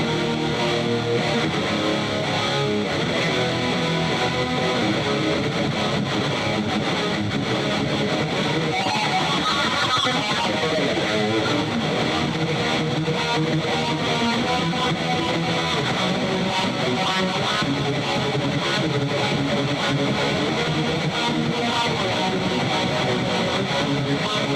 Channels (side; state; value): both; identical; correlation 1.00